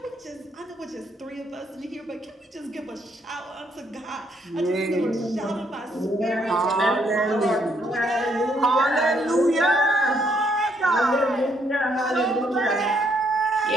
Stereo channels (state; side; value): normal; both; correlation 0.71